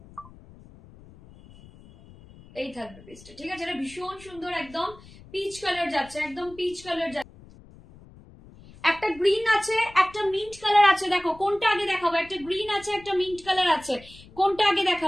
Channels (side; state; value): left; noise; rumble, 22 dB below the sound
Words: এই থাকবে পিসটা, ঠিক আছে? এটা ভীষণ সুন্দর, একদম পিচ কালার যাচ্ছে, একদম পিচ কালার যাচ্ছে। একটা গ্রিন আছে, একটা মিন্ট কালার আছে, দেখো কোনটা আগে দেখাবো? একটা গ্রিন আছে, একটা মিন্ট কালার আছে, কোনটা আগে